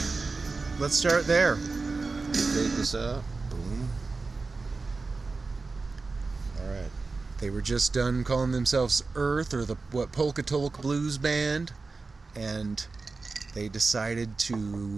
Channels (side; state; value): left; quieter; 4.0 dB